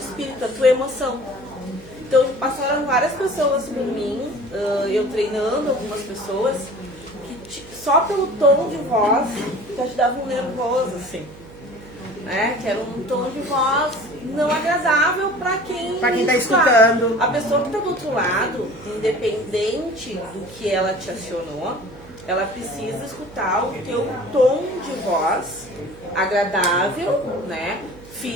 a tua emoção. Então, passaram várias pessoas por mim, eu treinando algumas pessoas, que só pelo tom de voz já te dava um nervoso, assim. né? Que era um tom de voz não agradável para quem tá escutando. A pessoa que está do outro lado, independente do que ela te acionou, ela precisa escutar o teu tom de voz agradável, né?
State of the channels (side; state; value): right; noise; hum, 19 dB below the sound